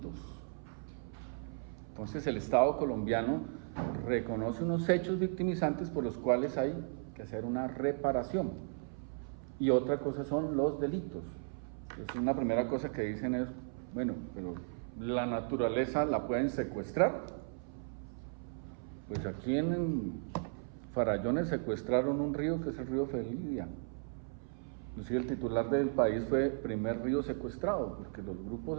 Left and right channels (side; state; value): left; silent; 54 dB below the other